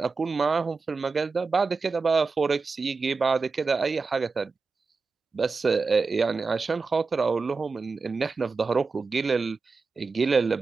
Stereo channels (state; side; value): quieter; left; 4.4 dB